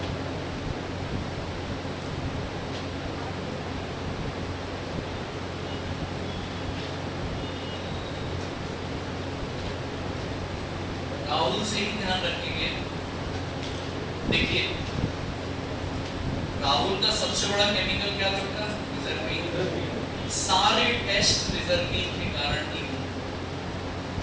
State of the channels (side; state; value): both; identical; correlation 1.00